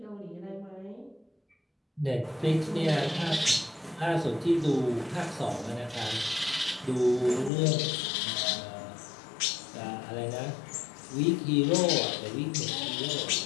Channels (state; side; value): drops out; right; at 7.5 s